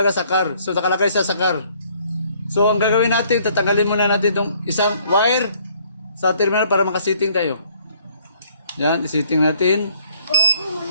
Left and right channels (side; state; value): both; inverted; correlation -0.62